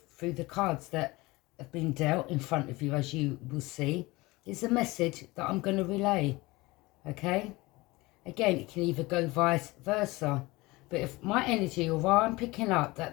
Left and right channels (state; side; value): quieter; right; 21.8 dB